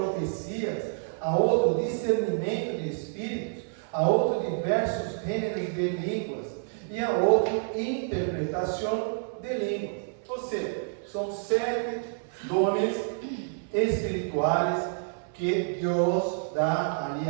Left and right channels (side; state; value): left; silent; 59 dB below the other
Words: a outro discernimento de espíritos, a outro diversos gêneros de línguas, e a outro interpretação de línguas. Ou seja, são 7 dones espirituais que Deus dá ali